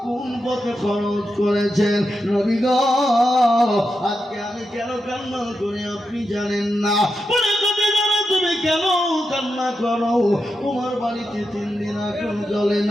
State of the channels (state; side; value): normal; both; correlation 0.87